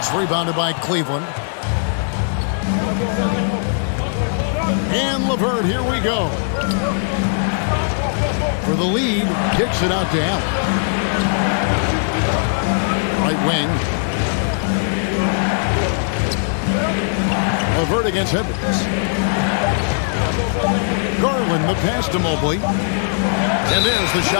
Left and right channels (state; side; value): silent; right; digital silence